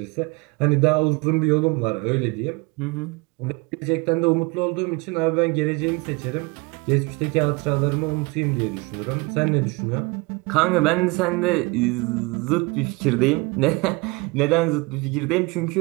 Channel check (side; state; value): left; quieter; 26.1 dB